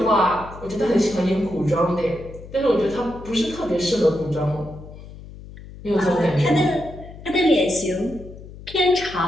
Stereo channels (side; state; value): left; noise; hum, 16 dB below the sound